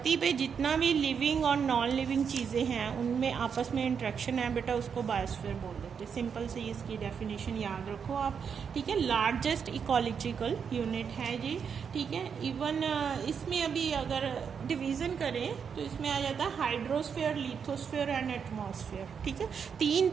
पे जितना भी लिविंग और नॉन लिविंग चीज़ें हैं उनमें आपस में इंट्रैक्शन है बेटा, उसको बायोस्फीयर बोल देते हैं। सिंपल से इसकी डेफिनेशन याद रखो आप, ठीक है। लार्जेस्ट इकोलॉजिकल यूनिट है जी, ठीक है। इवन इसमें अभी अगर डिवीज़न करें तो इसमें आ जाता है हाइड्रोस्फीयर, लिथोस्फीयर एंड एटमॉस्फेयर, ठीक है। 3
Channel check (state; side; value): quieter; left; 6.8 dB